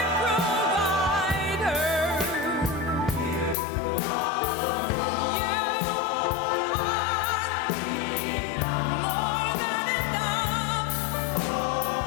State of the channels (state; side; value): drops out; right; at 3.6 s